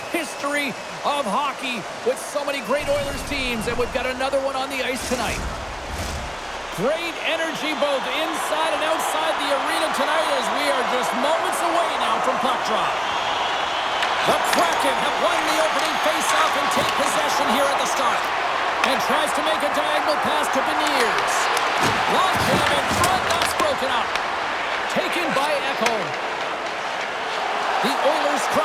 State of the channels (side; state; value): both; identical; correlation 1.00